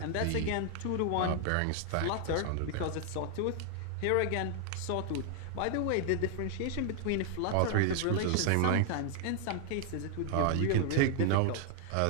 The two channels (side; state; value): both; different; correlation 0.00